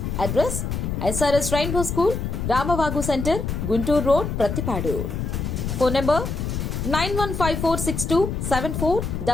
Address SRS rainbow school, Ramavagu centre, Guntur road, Prathipadu. Phone number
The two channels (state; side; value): noise; left; rumble, 3 dB below the sound